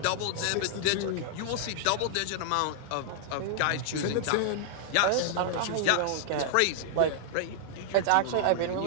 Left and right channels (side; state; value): both; different; correlation -0.01